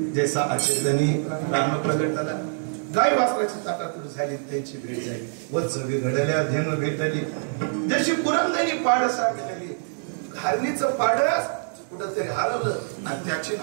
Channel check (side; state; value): left; silent; digital silence